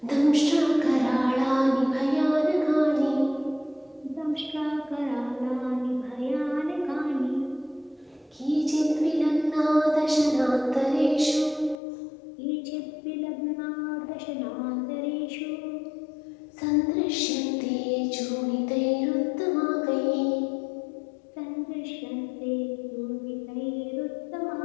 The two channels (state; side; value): drops out; right; at 11.8 s